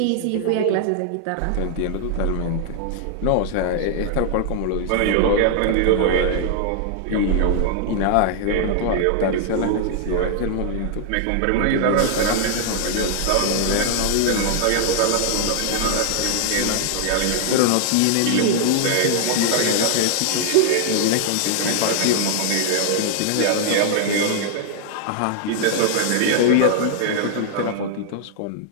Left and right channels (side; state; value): both; different; correlation -0.01